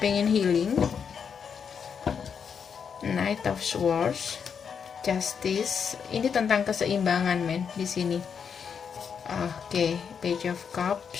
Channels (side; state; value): right; quieter; 6.8 dB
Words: healing. Knight of Swords. Justice. Ini tentang keseimbangan men di sini. Oke, Page of